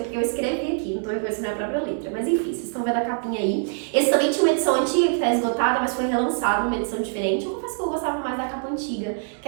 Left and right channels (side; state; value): left; silent; digital silence